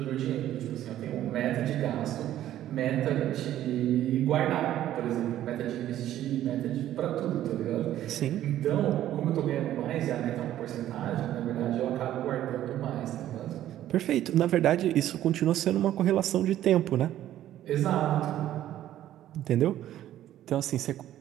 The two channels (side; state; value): left; quieter; 12.6 dB